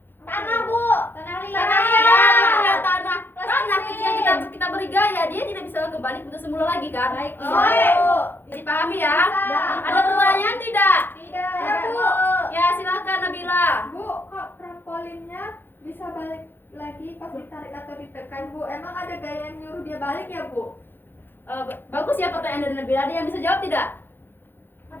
Tanah Bu. Tanah liat. Tanah Ya, liat. betul ya, tanah. Tanah Plastis. ketika kita beri gaya, dia tidak bisa kembali ke semula lagi kan? Baik. Oh, iya, Bu. Dipahami ya? Bisa. Ada pertanyaan tidak? Tidak. Ya Bu. Ya, silakan Nabila. Bu, kok trampolinnya bisa balik lagi pas ditarik atau ditekan Bu? Emang ada gaya yang nyuruh dia balik ya Bu? Bagus ya pertanyaan dari Nabila. Ada yang bisa jawab tidak?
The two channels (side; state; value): right; late; 0.099 ms